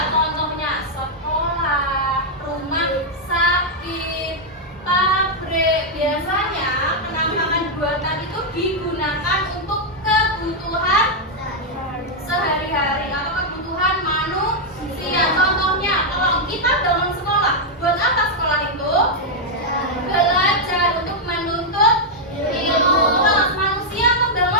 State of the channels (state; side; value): normal; both; correlation -0.02